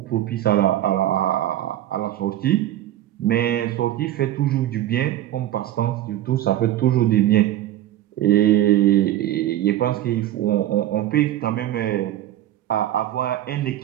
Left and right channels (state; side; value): quieter; left; 13.2 dB